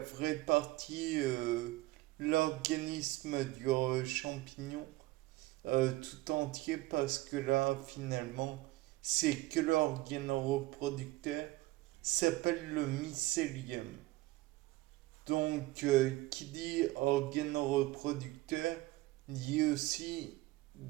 partie, l'organisme du champignon tout entier, parce que là, finalement, c'est que l'organe reproducteur, s'appelle le mycélium. Donc, qui dit organe reproducteur, dit aussi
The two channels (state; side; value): quieter; left; 19.1 dB